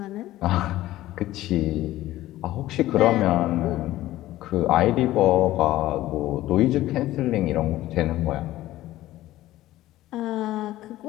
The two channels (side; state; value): right; quieter; 15.4 dB